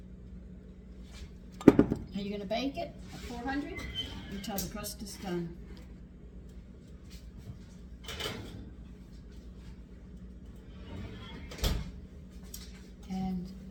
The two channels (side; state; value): both; identical; correlation 1.00